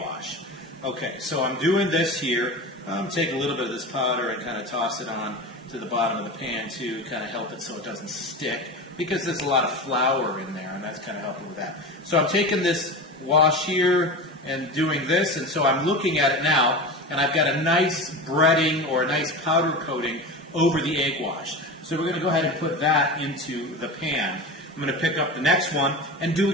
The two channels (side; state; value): both; normal; correlation 0.28